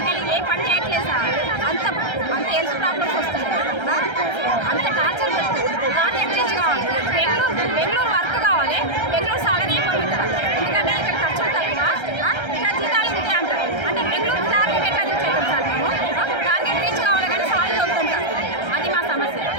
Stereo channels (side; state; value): right; late; 1.3 ms